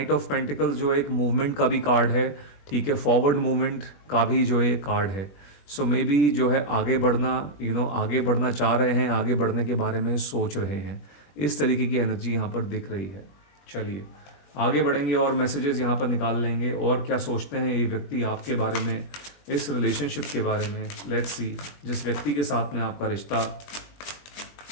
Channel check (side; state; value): right; late; 20 ms